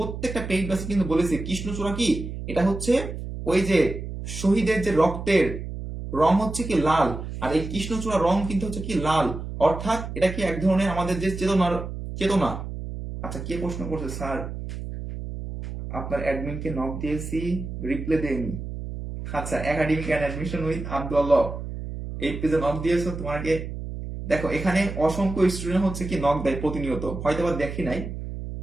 পেইড ব্যাচে কিন্তু বলেছি কৃষ্ণচূড়া কি, এটা হচ্ছে ওই যে শহীদের যে রক্তের রং হচ্ছে কি লাল, আর এই কৃষ্ণচূড়া রং কিন্তু হচ্ছে কি লাল, অর্থাৎ এটা কি এক ধরনের আমাদের যে চেতনার চেতনা। আচ্ছা, কে প্রশ্ন করছে স্যার, আপনার অ্যাডমিনকে নক দিয়েছি, রিপ্লাই দেয়নি। আচ্ছা, academic and admission with Abdullah, এই পেজে নক দিয়েছো তোমাকে। দেখো এখানে অসংখ্য স্টুডেন্ট হচ্ছে কি নক দেয় প্রতিনিয়ত, হয়তো বা দেখি নাই,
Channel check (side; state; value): right; noise; hum, 7 dB below the sound